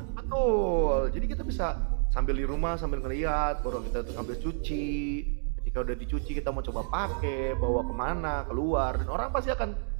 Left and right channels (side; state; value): left; silent; digital silence